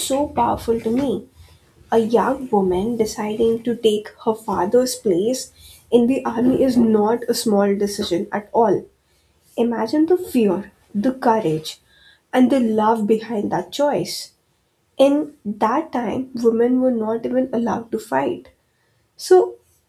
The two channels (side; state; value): both; identical; correlation 1.00